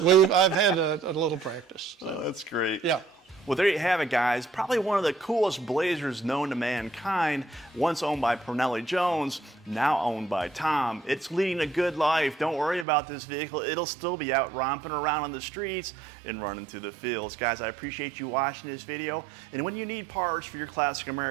No, I've had a little practice. So. Oh, that's great. Yeah. Well, there you have it, guys. Probably one of the coolest Blazers known to mankind. Once owned by Parnelli Jones, now owned by Tom. It's leading a good life. Don't worry about this vehicle. It'll still be out romping around on the streets and running through the fields. Guys, I appreciate you watching this video. And when you need parts for your classic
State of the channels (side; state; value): left; drops out; at 12.9 s